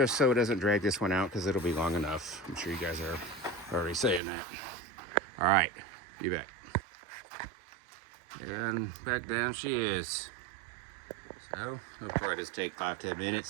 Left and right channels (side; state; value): left; drops out; at 4.2 s